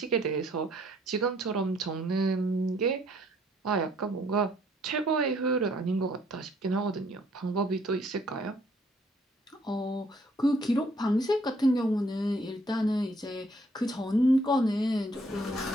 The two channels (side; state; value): both; normal; correlation 0.65